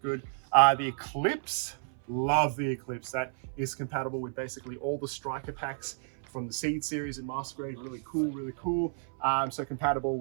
good. The Eclipse, love the Eclipse. That is compatible with basically all the striker packs from the Seed series in Master Grade. Really cool. So compatible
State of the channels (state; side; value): silent; left; 57 dB below the other